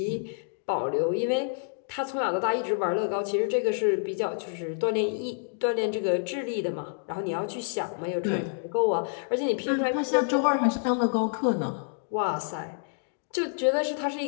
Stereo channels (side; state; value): right; silent; digital silence